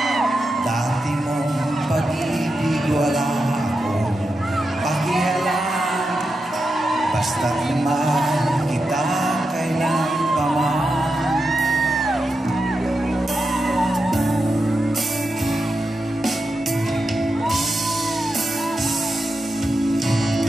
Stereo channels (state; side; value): normal; both; correlation 0.88